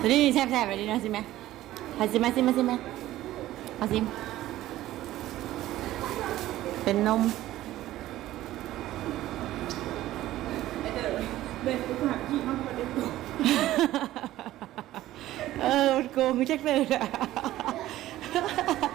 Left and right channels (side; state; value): left; quieter; 14.9 dB